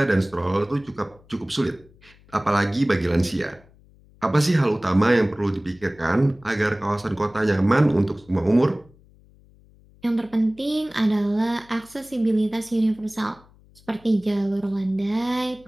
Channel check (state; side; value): noise; left; hum, 28 dB below the sound